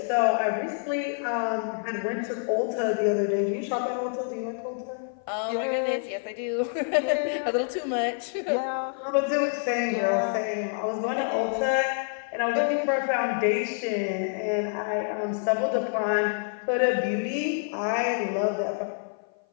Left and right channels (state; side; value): silent; right; 56 dB below the other